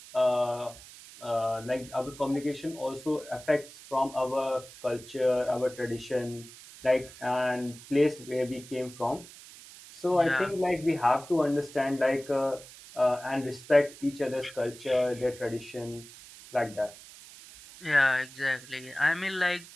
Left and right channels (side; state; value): right; noise; hiss, 18 dB below the sound